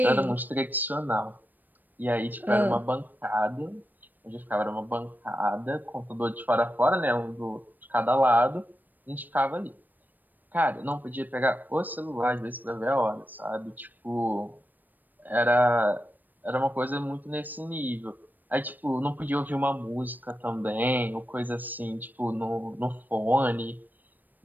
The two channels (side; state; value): left; late; 0.089 ms